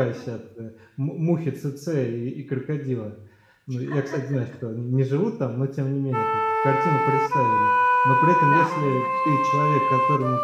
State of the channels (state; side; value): identical; both; correlation 1.00